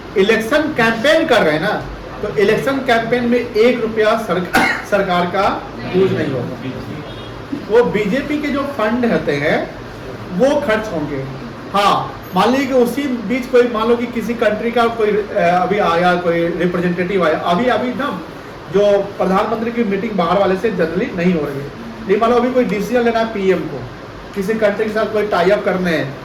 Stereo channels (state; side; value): identical; both; correlation 1.00